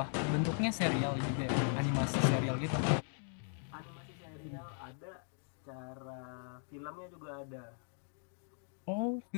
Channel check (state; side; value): silent; right; 52 dB below the other